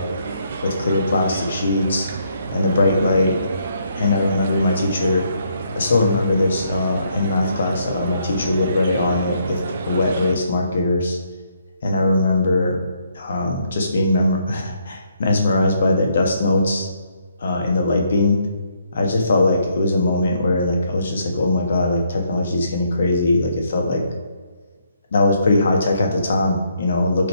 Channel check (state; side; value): inverted; both; correlation -0.73